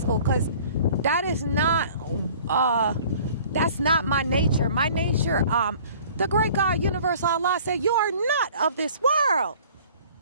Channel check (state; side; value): inverted; both; correlation -0.50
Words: because that is not, that's not my nature. My nature, the great God, universal Allah said, you are not of this world.